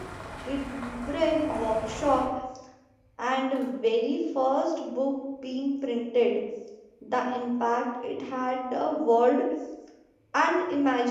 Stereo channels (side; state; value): both; identical; correlation 1.00